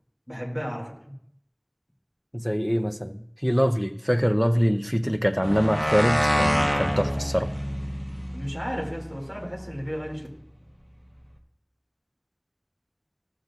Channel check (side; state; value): both; identical; correlation 1.00